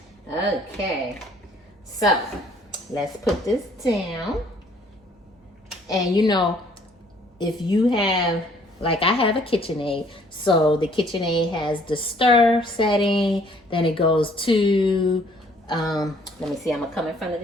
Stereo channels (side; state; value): both; normal; correlation 0.60